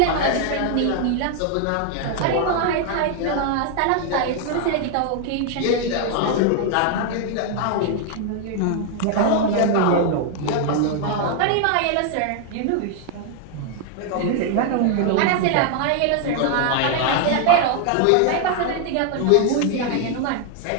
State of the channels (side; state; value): both; different; correlation 0.00